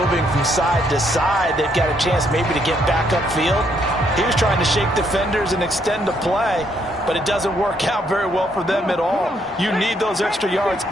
from side to side, they've got a chance maybe to get back upfield. He was trying to shake defenders and extend the play, but it doesn't work out very well for them at all. You need those extra yards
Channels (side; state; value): both; normal; correlation 0.72